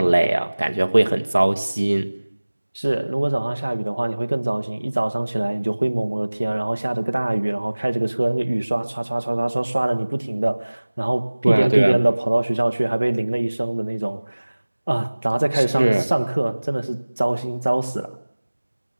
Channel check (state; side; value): inverted; both; correlation -1.00